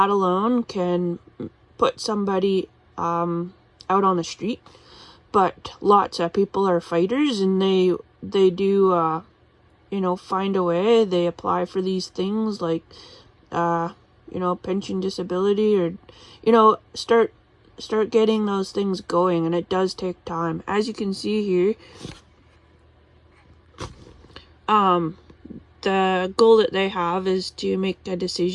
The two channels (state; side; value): identical; both; correlation 1.00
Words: alone can put somebody out on the street. But lots of people are fighters, and they do find a way. They apply for these things like pension, disability, or start getting those things going, and it does take time. As you can see here, the goal that they have is to make a